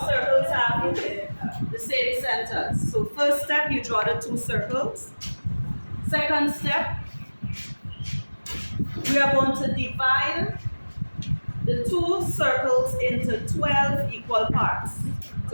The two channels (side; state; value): both; inverted; correlation -1.00